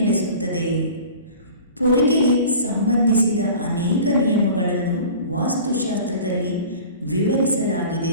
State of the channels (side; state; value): both; inverted; correlation -0.41